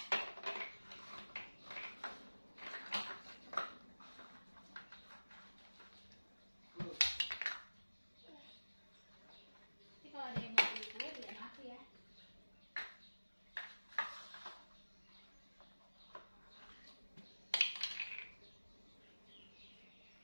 Kalau ada yang mau beli kue, bilang aku ya.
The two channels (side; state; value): both; inverted; correlation -1.00